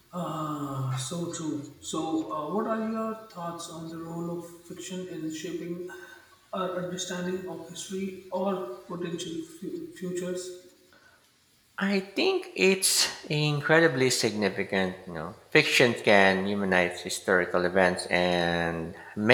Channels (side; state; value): both; identical; correlation 1.00